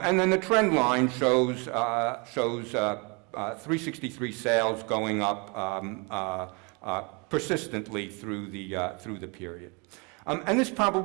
then the trend line shows 363 sales going up persistently through the period. And this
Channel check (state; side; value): quieter; left; 31.5 dB